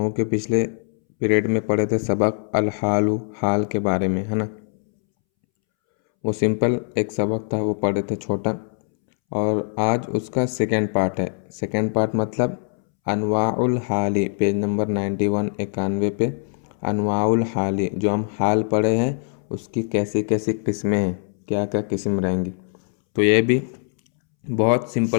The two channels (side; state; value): right; silent; 64 dB below the other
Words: के पिछले पीरियड में पढ़े थे सबक अल हालु, हाल के बारे में, है ना। वो सिंपल एक सबक था, वो पढ़े थे छोटा। और आज उसका सेकेंड पार्ट है। सेकेंड पार्ट मतलब अनवाउल हाली, पेज नंबर 91 91 पे अनवाउल हाली, जो हम हाल पढ़े हैं उसकी कैसी कैसी किस्में हैं, क्या क्या किस्म रहेंगी। तो ये भी बहुत